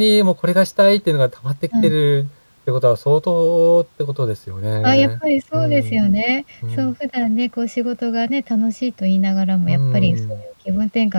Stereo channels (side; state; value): both; inverted; correlation -1.00